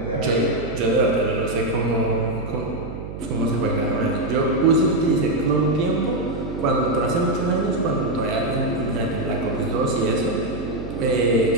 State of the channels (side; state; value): right; noise; hum, 9 dB below the sound